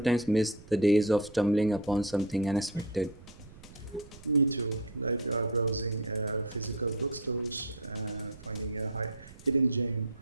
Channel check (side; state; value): right; noise; rumble, 19 dB below the sound